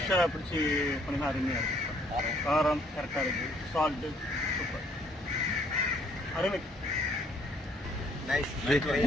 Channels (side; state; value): both; normal; correlation 0.65